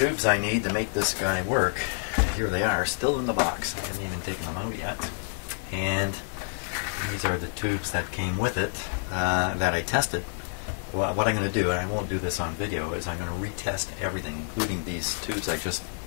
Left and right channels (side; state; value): right; silent; digital silence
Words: I need to make this guy work. Here they are, still in the box. I haven't even taken them out yet. And these are the tubes that came with it that I tested. Well, what I'm going to do, and I won't do this on video, is I'm going to retest everything, including these tubes I just